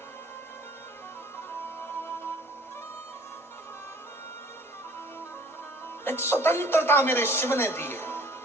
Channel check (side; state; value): both; normal; correlation 0.52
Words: एक स्वतंत्रता मेरे शिव ने दी है,